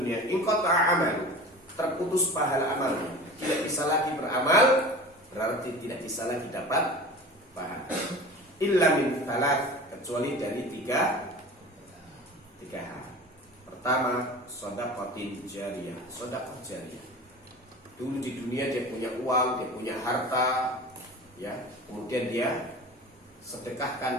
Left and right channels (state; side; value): normal; both; correlation 0.36